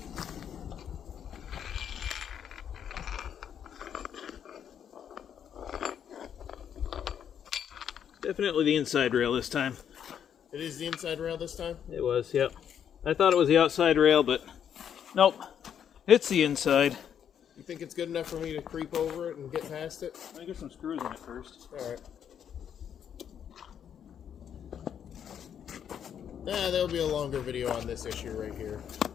Definitely the inside rail this time. It is the inside rail this time? It was, yep. I thought it was the outside rail, but nope. It's the inside. You think it's good enough for me to creep over it and get past it? Let me get some screws in it first. Alright. There'll be a longer video on this issue right here.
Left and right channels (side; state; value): right; quieter; 8.7 dB